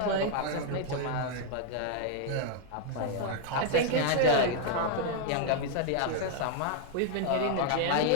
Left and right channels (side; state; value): both; different; correlation 0.00